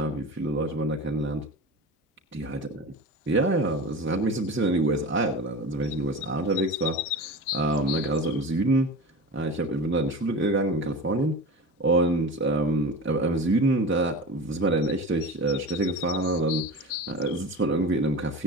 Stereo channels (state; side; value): normal; both; correlation 0.32